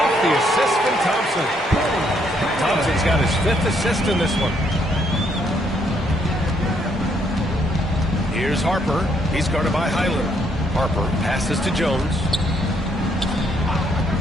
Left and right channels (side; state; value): both; normal; correlation 0.71